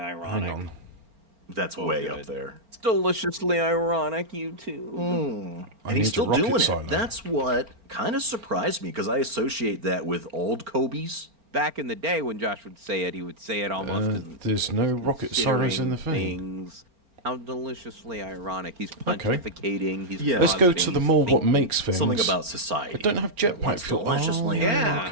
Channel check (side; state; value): left; late; 4.4 ms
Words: on. That's Oh, way good. up there. It's deliciously ironic, you two. And he's need still to rocket doing it. silo. That's what kind of surprised me because I associate that with old Kobe's. Back in the day when Josh would say it, he would say it almost as There's no rocket science in the considering thing. things. How deliciously ironic. He's pontificating. He's Yeah. Let's go to positing, the he's more what thinking. makes things. Something about society. I don't have jetpack What's fuel. deliciously Yeah.